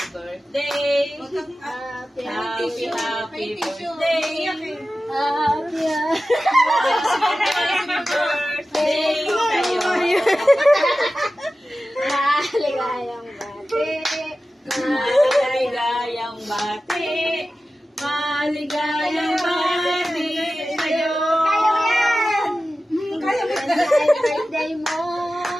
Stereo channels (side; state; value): both; normal; correlation 0.95